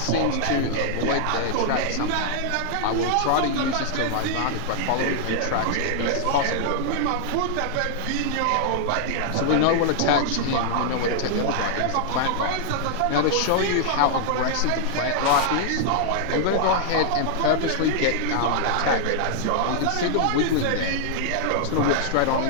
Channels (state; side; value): different; both; correlation -0.01